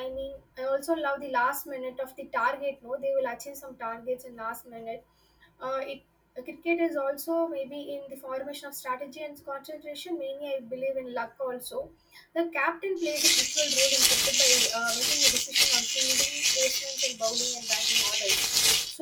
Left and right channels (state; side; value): identical; both; correlation 1.00